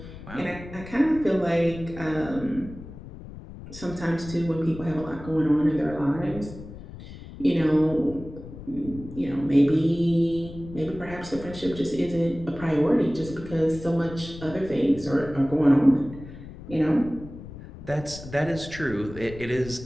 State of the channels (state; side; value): noise; left; rumble, 14 dB below the sound